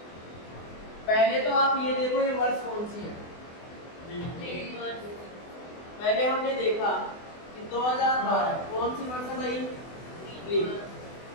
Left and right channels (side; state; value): right; late; 24 ms